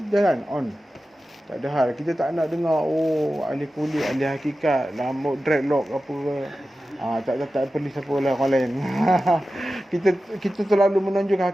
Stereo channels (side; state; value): both; normal; correlation 0.94